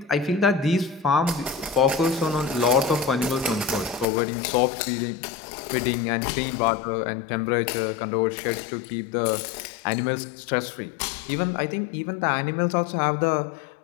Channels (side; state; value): right; drops out; at 4.0 s